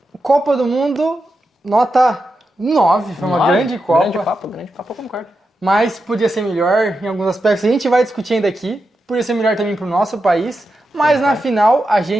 Copa do Mundo, nota 9. Foi uma 9? grande Copa. Grande Copa, eu concordo. Mas podia ser melhor em alguns aspectos. A gente vai discutir ainda aqui. Podia ser melhor também para o nosso país. Mas na final a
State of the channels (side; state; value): both; normal; correlation 0.88